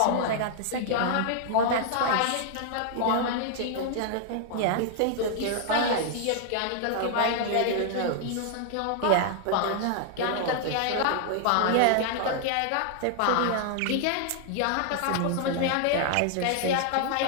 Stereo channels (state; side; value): different; both; correlation 0.00